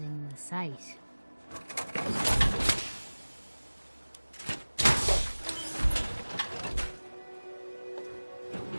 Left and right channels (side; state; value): both; inverted; correlation -1.00